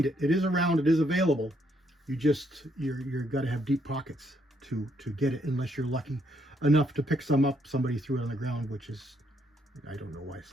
it. It is around, it is available. You're got to have deep pockets to get it, unless you're lucky enough to pick some up. Somebody threw it on the ground, which is, I don't know why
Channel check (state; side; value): normal; both; correlation 0.73